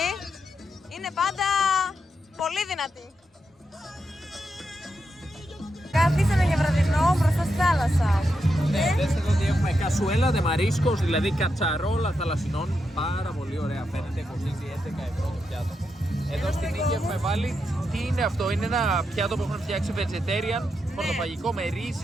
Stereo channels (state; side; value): normal; both; correlation 0.85